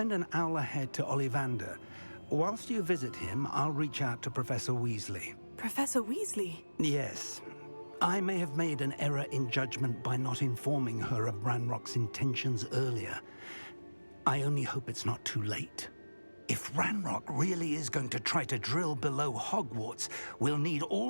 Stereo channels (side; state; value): both; inverted; correlation -1.00